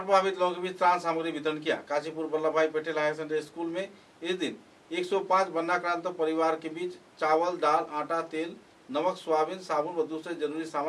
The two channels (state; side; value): identical; both; correlation 1.00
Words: लोगों के बीच त्राण सामग्री वितरण किया। काशीपुर वल्लभ भाई पटेल हायर सेकेंडरी स्कूल में इस दिन 105 वन्नाक्रांत परिवार के बीच चावल, दाल, आटा, तेल, नमक, सोयाबीन, साबुन व दूसरे जरूरी